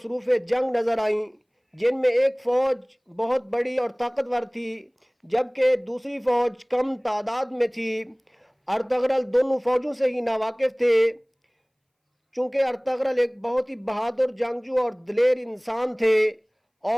جنگ نظر آئیں، جن میں ایک فوج بہت بڑی اور طاقتور تھی جبکہ دوسری فوج کم تعداد میں تھی۔ ارطغرل دونوں فوجوں سے ہی ناواقف تھے، چونکہ ارطغرل ایک بہت ہی بہادر جنگجو اور دلیر انسان تھے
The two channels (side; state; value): both; identical; correlation 1.00